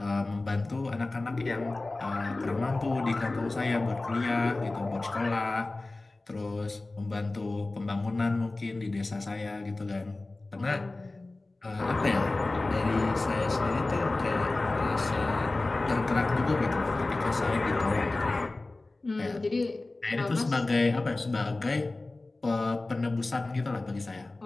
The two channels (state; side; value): quieter; right; 3.1 dB